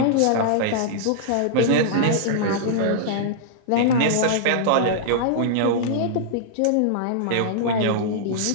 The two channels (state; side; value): different; both; correlation -0.02